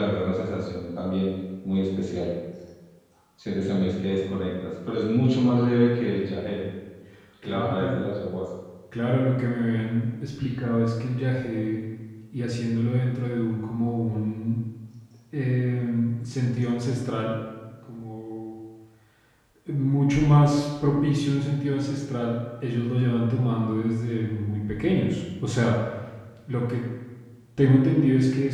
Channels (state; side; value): identical; both; correlation 1.00